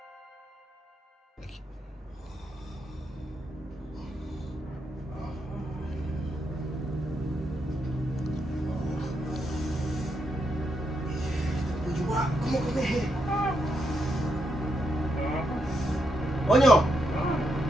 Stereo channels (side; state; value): both; normal; correlation 0.81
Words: Aku mau kemeh. Oh nyo.